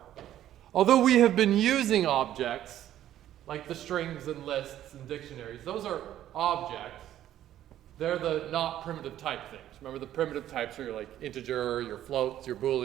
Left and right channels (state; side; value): quieter; left; 12.2 dB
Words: although we have been using objects, like the strings and lists and dictionaries, those are objects. They're the not primitive type things. Remember, the primitive types are your like integer, your floats, your